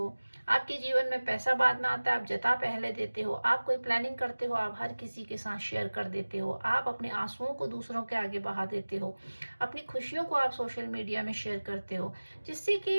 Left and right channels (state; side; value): inverted; both; correlation -1.00